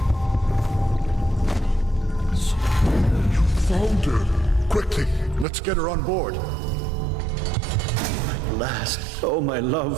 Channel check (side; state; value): left; drops out; at 5.5 s